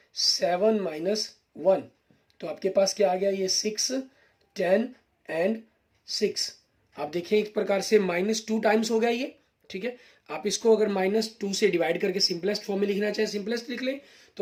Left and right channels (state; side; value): identical; both; correlation 1.00